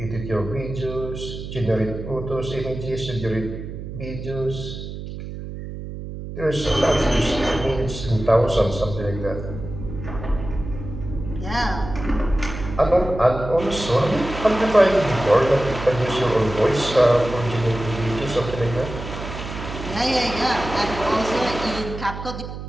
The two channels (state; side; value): noise; right; hum, 9 dB below the sound